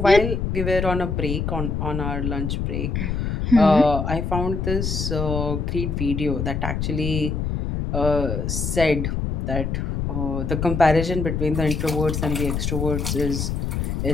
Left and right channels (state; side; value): noise; left; rumble, 2 dB below the sound